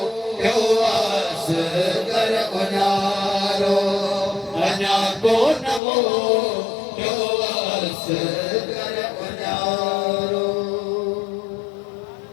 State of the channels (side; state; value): right; drops out; at 5.8 s